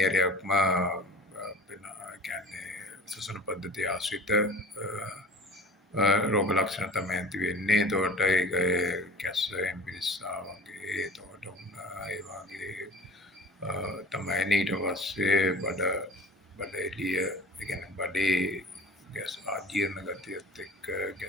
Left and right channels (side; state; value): both; normal; correlation 0.42